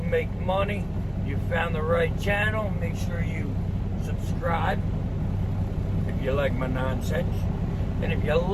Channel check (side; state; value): both; identical; correlation 1.00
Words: make money, you found the right channel. Make sure you subscribe if you like my nonsense. And if you